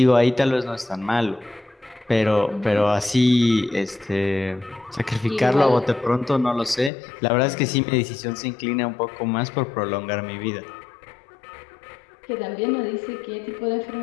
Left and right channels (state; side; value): drops out; right; at 6.9 s